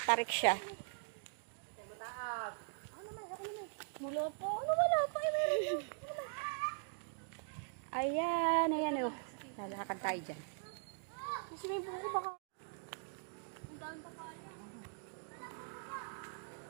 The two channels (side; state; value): left; silent; digital silence